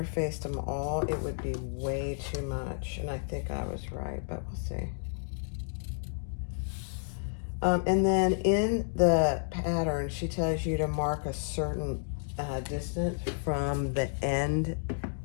them all, it would be way too much. And I think I was right, but we'll see. And then in the pattern, she tells you to mark a certain distance from the end,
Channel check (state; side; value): silent; right; digital silence